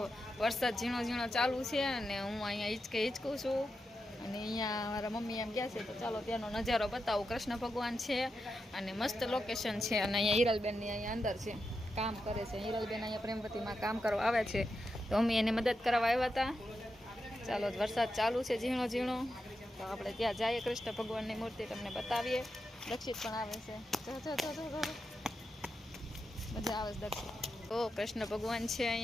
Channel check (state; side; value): normal; both; correlation 0.88